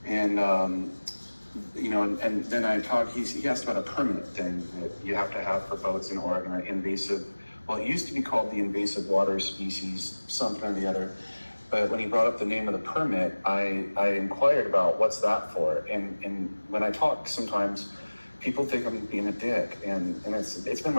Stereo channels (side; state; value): both; inverted; correlation -1.00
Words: And, and then he asked about a permit thing that you have to have for boats in Oregon, an invasive, well, it used to be called the invasive water species, something or the other. But when he brought up the name of the permit, I inquired about what's that for. And when I talk, sometimes people think I'm being a dick, and it's been